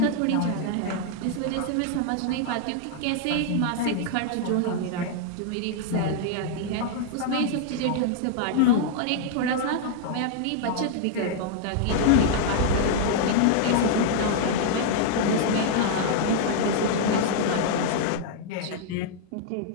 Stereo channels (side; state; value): both; different; correlation -0.01